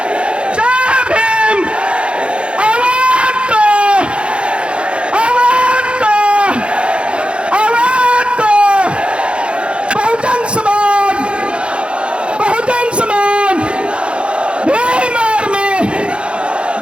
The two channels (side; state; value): left; late; 0.057 ms